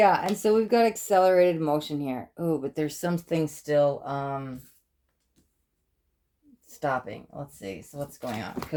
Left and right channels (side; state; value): both; identical; correlation 1.00